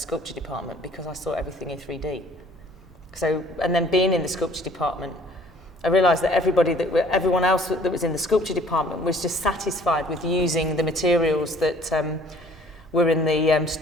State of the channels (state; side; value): normal; both; correlation 0.55